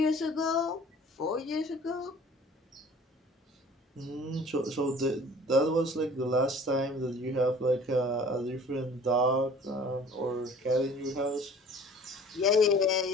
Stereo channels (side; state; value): both; normal; correlation 0.49